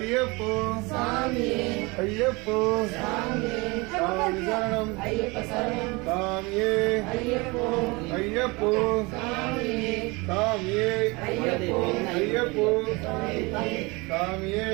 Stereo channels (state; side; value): quieter; left; 25.8 dB